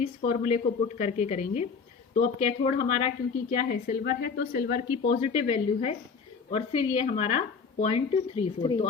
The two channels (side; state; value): right; quieter; 5.4 dB